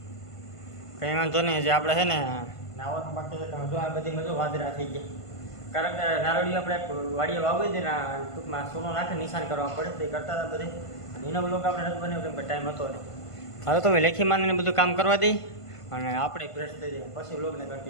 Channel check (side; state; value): right; late; 1.5 ms